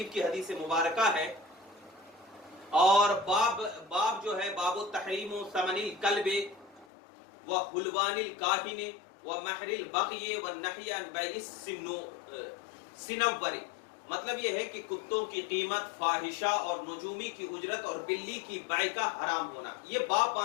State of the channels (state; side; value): drops out; right; at 6.9 s